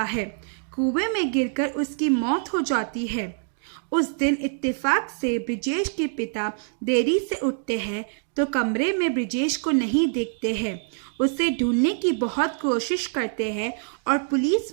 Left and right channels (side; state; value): left; silent; digital silence